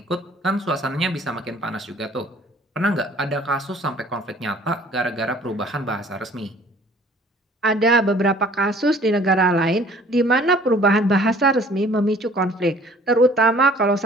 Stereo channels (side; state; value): both; normal; correlation 0.53